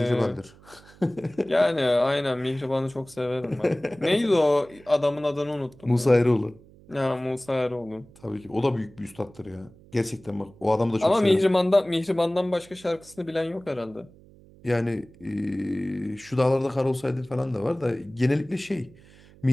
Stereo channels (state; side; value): noise; right; hum, 24 dB below the sound